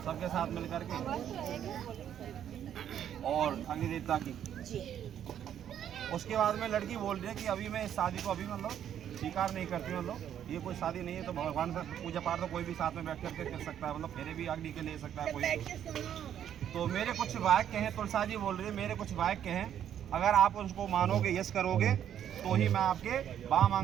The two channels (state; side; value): quieter; left; 9.9 dB